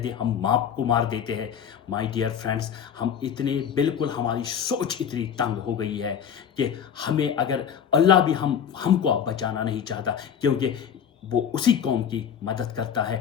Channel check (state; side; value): quieter; right; 8.2 dB